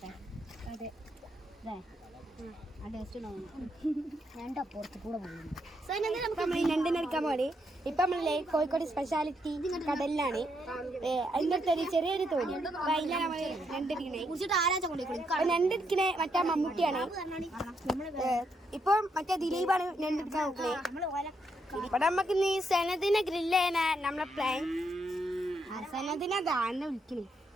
അതെ ആ ടേസ്റ്റ് ഞണ്ട് അപ്പുറത്ത് കൂടെ പോകുന്നു. ഞണ്ടിനെടുക്കാൻ പോണേ. ഇപ്പൊ നമ്മളെ കോഴിക്കോട് സ്പെഷ്യാലിറ്റി കടലിലാണ്. അതിൻ്റെ അടുത്തൊരു ചെറിയൊരു തോണി. അതിലാണ് നമ്മള് ഞണ്ടെടുക്കണേ. ഞണ്ടെടുക്കണേ മറ്റേ മമ്മൂട്ടിയാണ്. ഇപ്പൊ മറ്റേ ദിലീപാണ് ഞണ്ടെടുക്കാൻ നോക്കണേ. ഇവിടെ നമുക്ക് നീ സനദിനെ ഗ്രില്ല് ചെയ്യാനാ നമ്മളെ പ്ലാൻ. സനദിനെ ദാന്നെ വിളിക്കണേ.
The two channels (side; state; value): both; normal; correlation 0.78